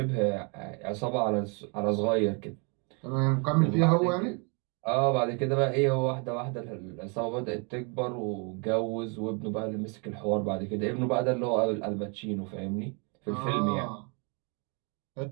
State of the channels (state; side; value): quieter; left; 34.6 dB